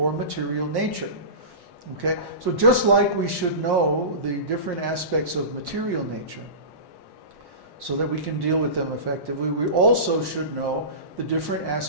material nature. Okay? So just like we should know the different aspects of material nature so that we can deal with them effectively, we also should know the different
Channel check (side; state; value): left; late; 1.1 ms